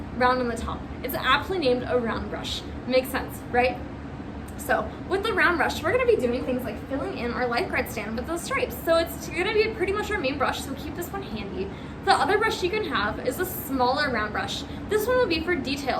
round on the top. It's aptly named a round brush. Makes sense, right? So with the round brush, we're going to be doing things like filling in our lifeguard stand with those stripes. So it's going to be pretty much our main brush, so keep this one handy. The other brush you can have is a smaller round brush. This one will be for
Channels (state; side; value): identical; both; correlation 1.00